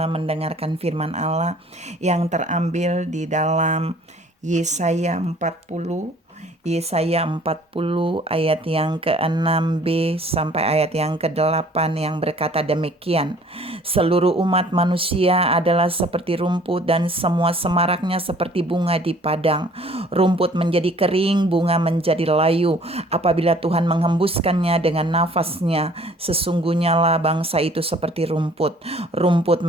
mendengarkan firman Allah yang terambil di dalam Yesaya 40 ayat yang ke-6b sampai ayat yang ke-8 yang berkata demikian. Seluruh umat manusia adalah seperti rumput dan semua semaraknya seperti bunga di padang. Rumput menjadi kering, bunga menjadi layu. Apabila Tuhan menghembuskannya dengan nafasnya, sesungguhnya lah bangsa itu seperti rumput. Rumput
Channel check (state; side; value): normal; both; correlation 0.54